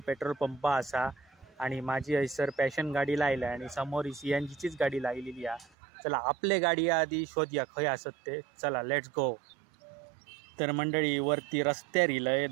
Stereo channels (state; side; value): drops out; left; at 5.7 s